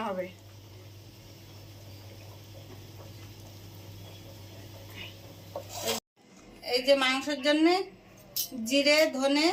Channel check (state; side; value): identical; both; correlation 1.00